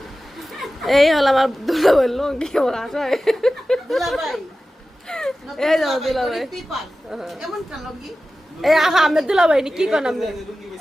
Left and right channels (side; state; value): both; normal; correlation 0.95